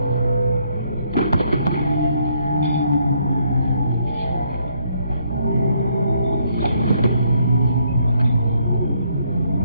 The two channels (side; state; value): both; inverted; correlation -0.70